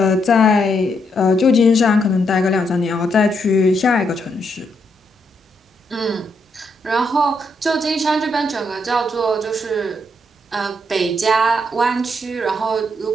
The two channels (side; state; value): both; normal; correlation 0.77